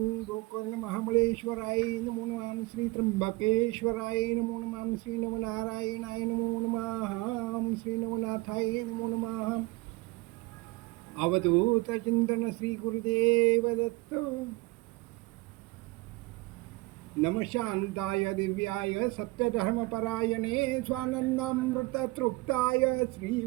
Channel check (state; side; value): quieter; left; 23.0 dB